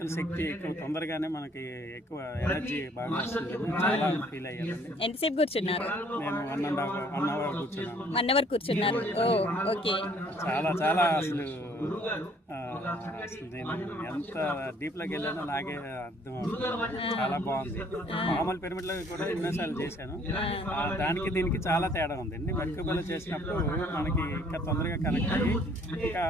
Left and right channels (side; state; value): both; normal; correlation 0.60